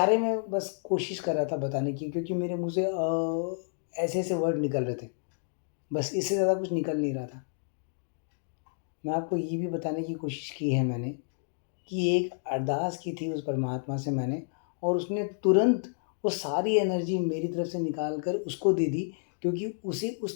में बस कोशिश कर रहा था बताने की, क्योंकि मेरे मुँह से ऐसे-ऐसे वर्ड निकल रहे थे। बस इससे ज़्यादा कुछ निकल नहीं रहा था। मैं आपको ये भी बताने की कोशिश की है मैंने कि एक अरदास की थी उस परमात्मा से मैंने, और उसने तुरंत वो सारी एनर्जी मेरी तरफ से निकाल कर उसको दे दी, क्योंकि उसे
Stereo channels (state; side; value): silent; right; digital silence